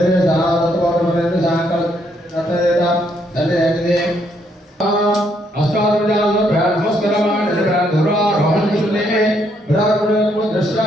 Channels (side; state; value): both; normal; correlation 0.72